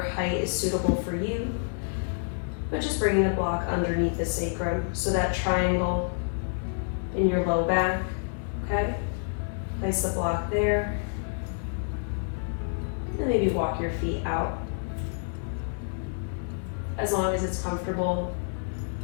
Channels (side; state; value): right; silent; digital silence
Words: is suitable for you, but just bringing the block underneath the sacrum, so that triangle in your low back, okay? Place the block there, and maybe walk your feet out. As long as it's comfortable